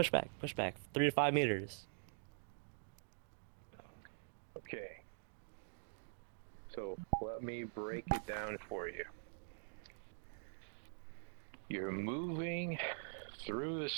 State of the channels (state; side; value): silent; left; digital silence